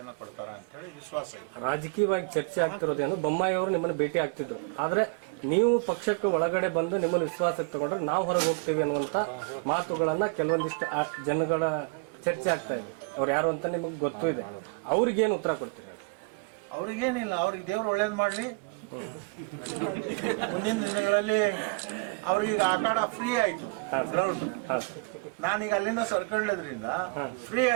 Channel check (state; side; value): quieter; left; 31.3 dB